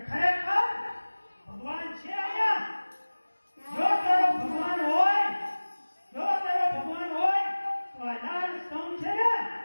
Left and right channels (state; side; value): inverted; both; correlation -1.00